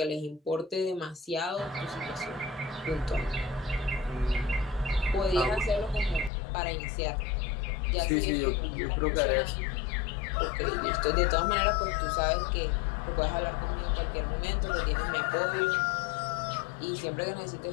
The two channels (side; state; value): right; drops out; at 6.3 s